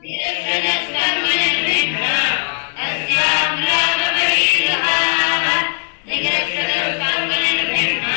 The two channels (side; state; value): right; silent; 61 dB below the other